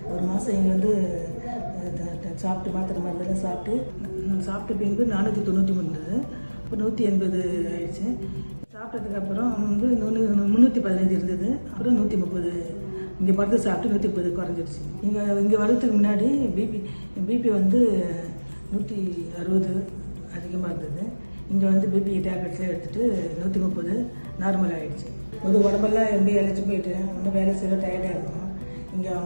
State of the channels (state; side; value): inverted; both; correlation -1.00